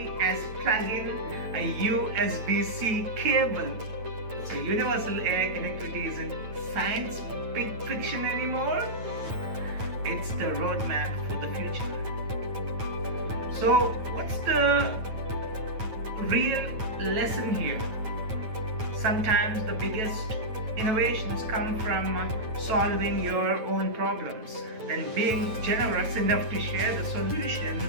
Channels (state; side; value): late; left; 9.2 ms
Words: as plug in a USB-C cable. So universal AI connectivity isn't science fiction anymore. It's the roadmap for the future. So what's the real lesson here? Sometimes the biggest innovations come from solving your own problems, then being generous enough to share the solution.